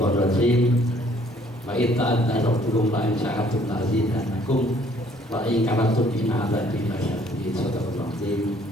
rajim. Wa itta'adna rabbukum la in sya'atum la azidannakum wa in kafartum inna 'adzabi lasyadid. Sadaqallahu azim.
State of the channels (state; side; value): normal; both; correlation 0.61